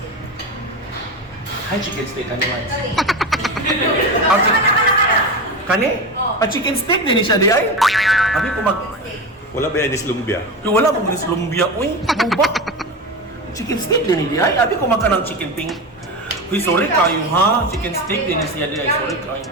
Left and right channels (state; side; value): normal; both; correlation 0.22